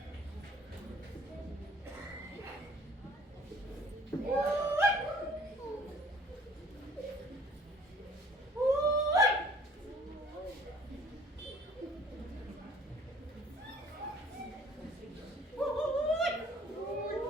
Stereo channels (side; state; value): both; normal; correlation 0.55